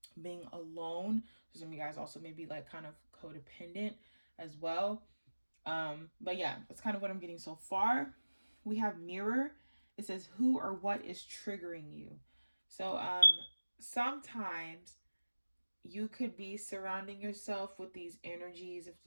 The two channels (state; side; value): inverted; both; correlation -1.00